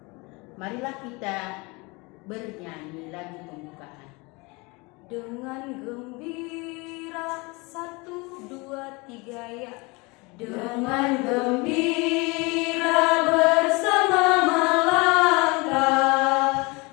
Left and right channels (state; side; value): quieter; right; 26.6 dB